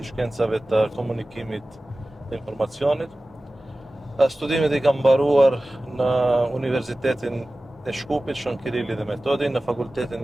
shkencave të komunikimit dhe informacionit. Studimet i kam mbaruar në Universitetin e Shkupit, Shën Kirilli dhe Metodi, në Fakultetin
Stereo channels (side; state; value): both; normal; correlation 0.96